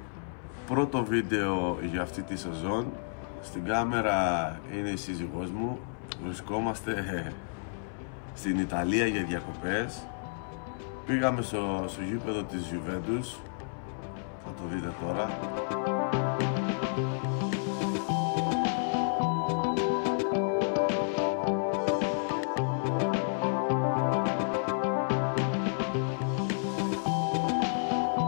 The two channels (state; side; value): silent; right; 57 dB below the other